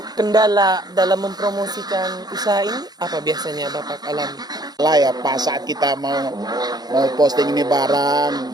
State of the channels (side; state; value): left; late; 0.19 ms